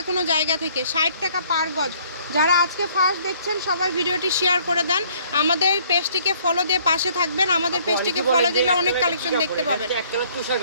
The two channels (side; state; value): both; inverted; correlation -0.60